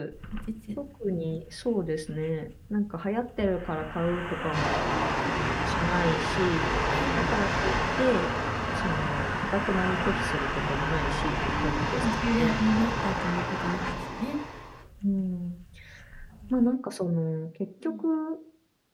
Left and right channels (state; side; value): identical; both; correlation 1.00